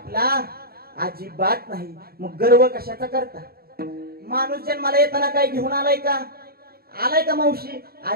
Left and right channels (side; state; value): left; late; 0.45 ms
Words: अजिबात नाही. मग गर्व कशाचा करता. माणूस जन्माला येताना काय घेऊन आलाय का? आलाय का मावशी?